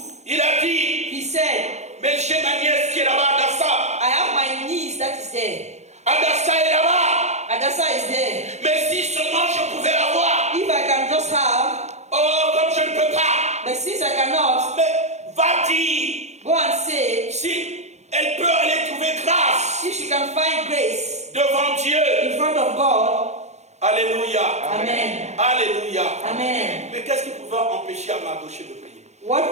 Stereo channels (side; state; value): left; late; 0.33 ms